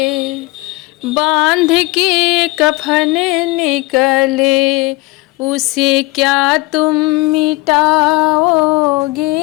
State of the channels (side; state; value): right; quieter; 22.0 dB